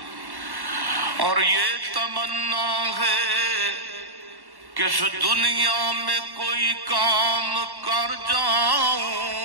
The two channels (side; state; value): left; late; 1.1 ms